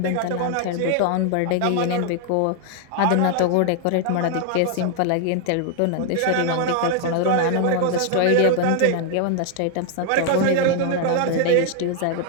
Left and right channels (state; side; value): different; both; correlation 0.00